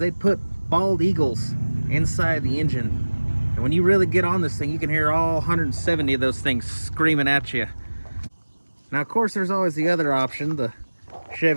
put bald eagles inside the engine. And when you really get on this thing, you can hear all 170 of those things screaming at you. Now, of course, there's always the other option, the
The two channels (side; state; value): both; inverted; correlation -1.00